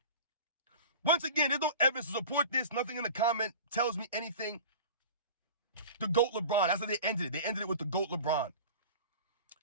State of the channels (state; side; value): inverted; both; correlation -0.37